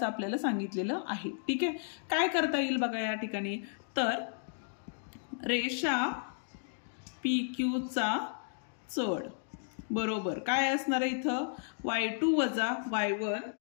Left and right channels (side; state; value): right; silent; digital silence